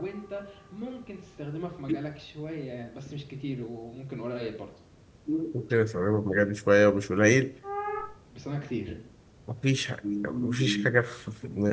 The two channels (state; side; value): identical; both; correlation 1.00